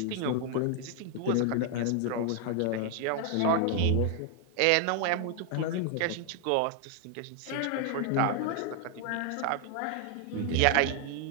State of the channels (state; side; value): different; both; correlation 0.00